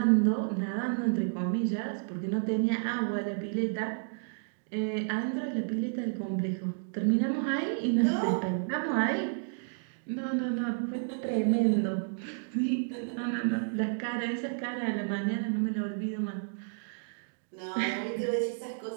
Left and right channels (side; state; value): left; silent; digital silence